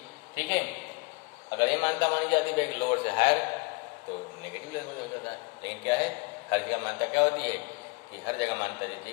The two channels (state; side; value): quieter; right; 27.5 dB